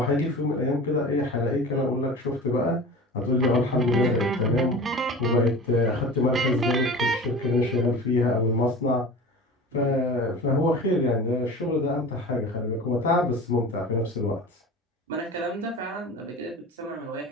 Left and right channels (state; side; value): normal; both; correlation 0.36